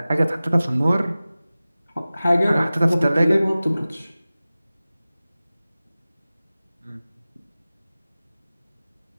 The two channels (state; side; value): inverted; both; correlation -0.97